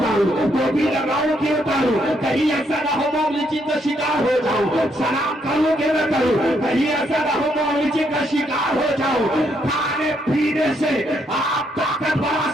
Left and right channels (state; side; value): normal; both; correlation 0.74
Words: टोपी लगाऊं कि उतारूं, कहीं ऐसा ना हो मौलिची का शिकार हो जाऊं, सलाम करूं कि न करूं, कहीं ऐसा ना हो मौलिची का शिकार हो जाऊं। खाने पीने से आप ताकत बढ़ा